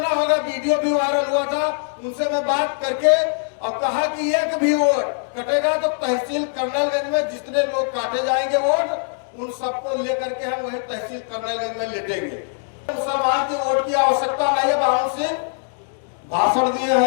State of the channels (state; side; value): silent; right; digital silence